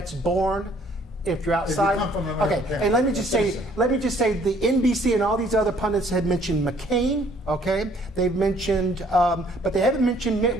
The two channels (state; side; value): normal; both; correlation 0.61